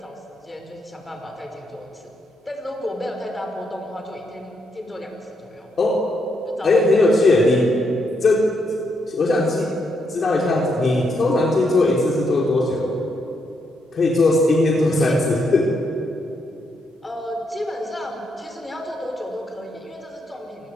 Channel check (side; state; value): both; normal; correlation 0.78